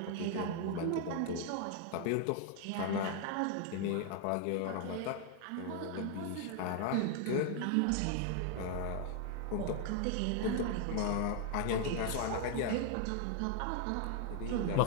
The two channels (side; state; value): both; different; correlation 0.00